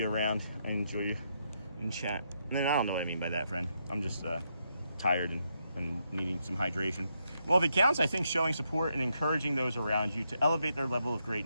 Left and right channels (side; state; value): both; inverted; correlation -0.79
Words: around and enjoy you in chat. And then I don't know what I mean by that, friend. I'm just tired and needing some hydration. Well, if it counts, I think showing support and encouraging those around you to elevate their level of